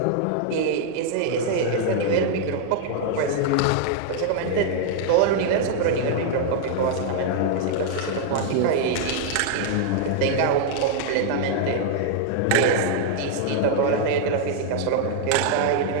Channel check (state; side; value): different; both; correlation 0.00